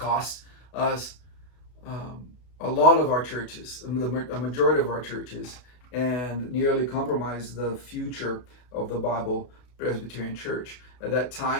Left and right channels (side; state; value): right; late; 33 ms